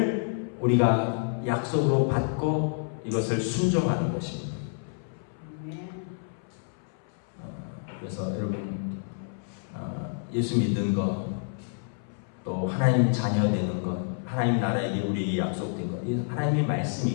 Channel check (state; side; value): silent; right; 59 dB below the other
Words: 우리가 약속으로 받고 이것을 순종하는 것입니다. 그래서 여러분, 예수 믿는 것, 또 하나님 자녀 되는 것, 하나님 나라에게 우리에게 약속된 것, 하나님의